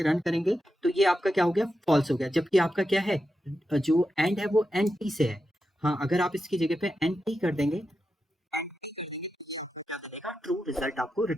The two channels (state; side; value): normal; both; correlation 0.88